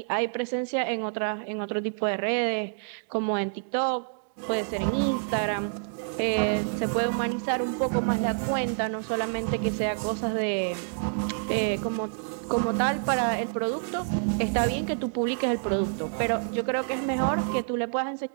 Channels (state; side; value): silent; left; digital silence